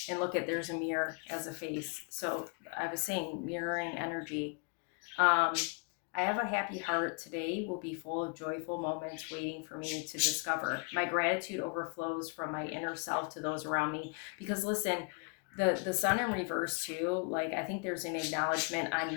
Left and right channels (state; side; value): quieter; right; 34.3 dB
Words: And look there's a mirror as a face. So I was saying mirroring energy. I have a happy heart. Today will be full of joyful moments waiting for me to discover. My gratitude overflows from my inner self to those around me. Because listen, the sun in reverse too, like, I think there's an acknowledgement on